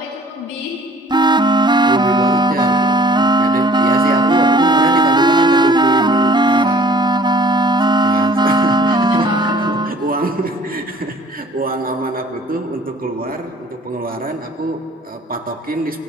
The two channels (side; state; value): both; normal; correlation 0.52